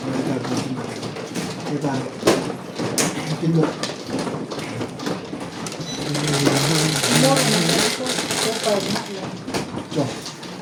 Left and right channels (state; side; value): identical; both; correlation 1.00